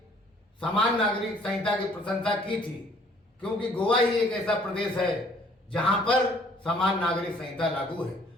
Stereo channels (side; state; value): both; normal; correlation 0.59